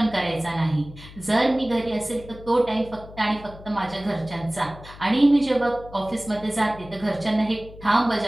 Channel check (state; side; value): noise; left; hum, 18 dB below the sound